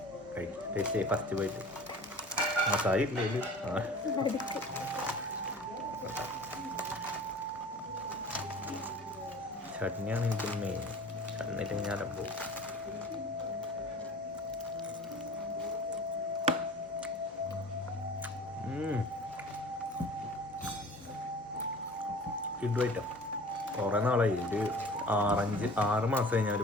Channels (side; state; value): both; normal; correlation 0.42